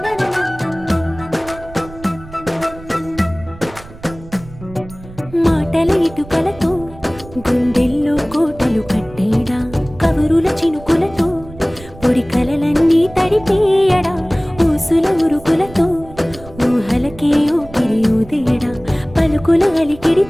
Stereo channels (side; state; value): right; noise; rumble, 18 dB below the sound